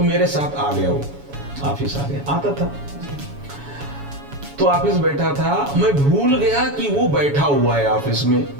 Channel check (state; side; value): late; left; 7.1 ms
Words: मेरे साथ आ गया, वो ऑफिस आ गया, आता था तो ऑफिस बैठा था, मैं भूल गया कि वो बैठा हुआ है ऑफिस में,